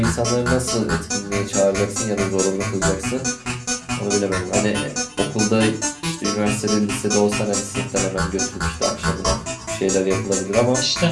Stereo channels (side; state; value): both; identical; correlation 1.00